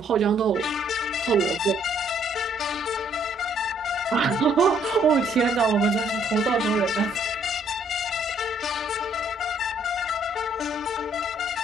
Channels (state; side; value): normal; both; correlation 0.66